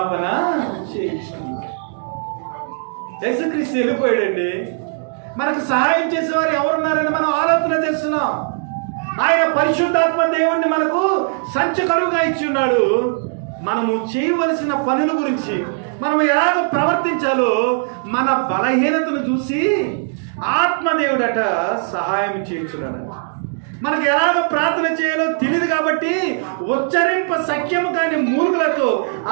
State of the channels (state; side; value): silent; left; 63 dB below the other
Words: చేయుచున్నాడు. యేసుక్రీస్తు వెళ్ళిపోయాడండి. మనకు సహాయం చేసేవారు ఎవరున్నారని మనం ఆలోచన చేస్తున్నాం. ఆయన పరిశుద్ధాత్మ దేవుణ్ణి మనకు సంచకరువుగా ఇచ్చి ఉన్నాడు. మనము చేయవలసిన పనుల గురించి, మనం ఎలాగ ప్రవర్తించాలో మన బలహీనతను చూసి ఆత్మదేవుడట సహాయం చేయించున్నాడు. మనకు ఎలాగ ప్రార్థన చేయాలో తెలియదు కాబట్టి ఉచ్చరింప సఖ్యము కాని మూర్ఖులతో